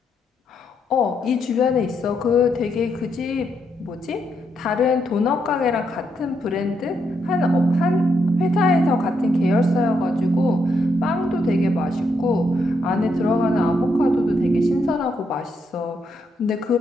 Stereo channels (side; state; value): both; normal; correlation 0.79